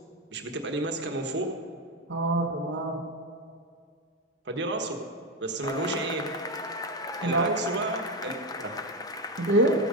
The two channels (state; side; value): normal; both; correlation 0.13